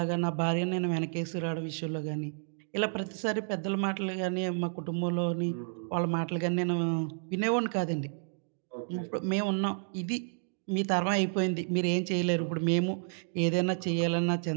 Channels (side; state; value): left; silent; digital silence